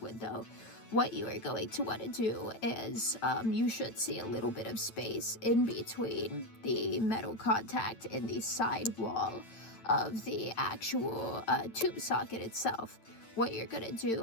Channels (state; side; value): late; right; 9.0 ms